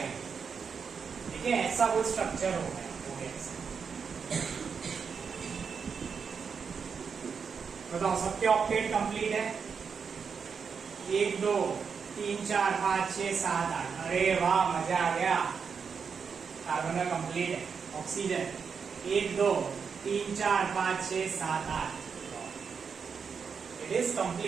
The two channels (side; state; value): left; quieter; 6.1 dB